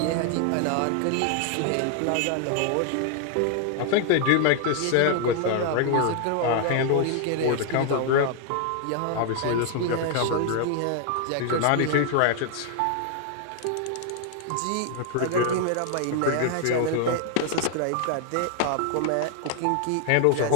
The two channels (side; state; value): both; different; correlation 0.00